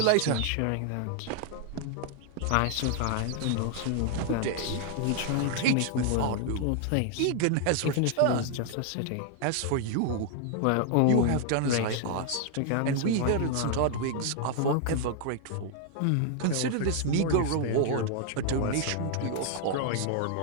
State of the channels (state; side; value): different; both; correlation 0.00